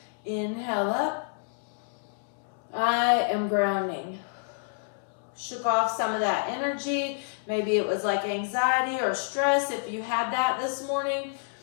Inhale up. I am grounding. Shook off some of that energy. Maybe it was like anxiety or stress. If you had that this morning,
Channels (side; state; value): right; silent; 59 dB below the other